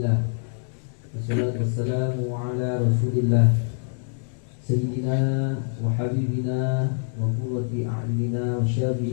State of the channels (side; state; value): right; silent; 62 dB below the other